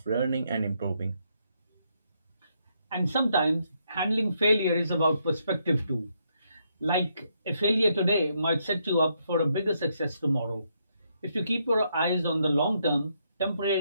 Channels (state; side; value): inverted; both; correlation -0.76